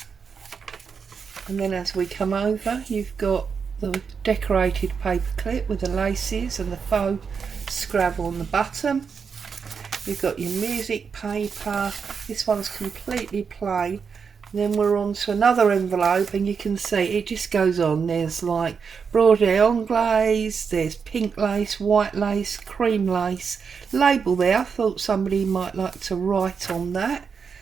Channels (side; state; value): left; quieter; 6.0 dB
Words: And then as we come over, you've got the decorated paper clip with the laces and the faux scrabble on the bottom. You've got your music paper. This one's completely plain. And then we're on to another envelope, and you can see it just goes on. There's like broderie anglaise, there's pink lace, white lace, cream lace. Label there, I thought somebody might like to write on that.